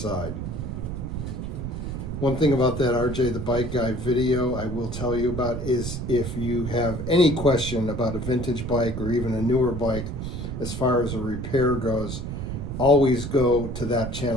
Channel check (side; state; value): right; noise; rumble, 5 dB below the sound